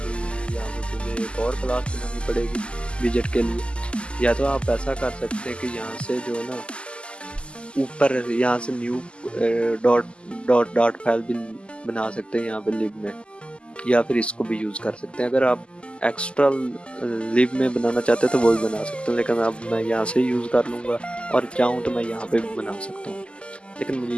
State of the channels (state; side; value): late; right; 0.052 ms